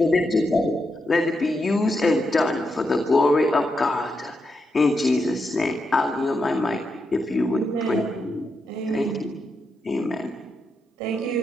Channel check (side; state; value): both; normal; correlation 0.84